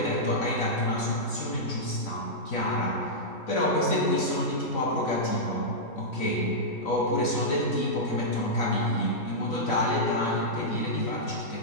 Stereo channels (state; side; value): late; right; 4.0 ms